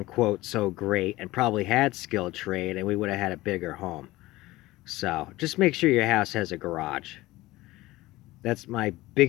so great and probably had skilled trade, and we would have had a bigger home. So just make sure your house has a garage. That's my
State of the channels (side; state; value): right; quieter; 18.5 dB